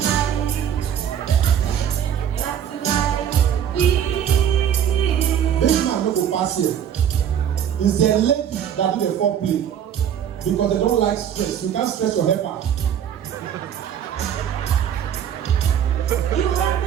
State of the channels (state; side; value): quieter; left; 9.3 dB